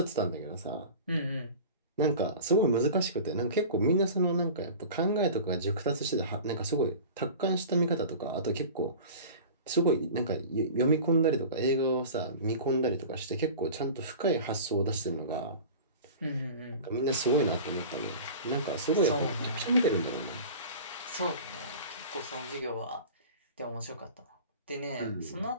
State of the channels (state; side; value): inverted; both; correlation -0.37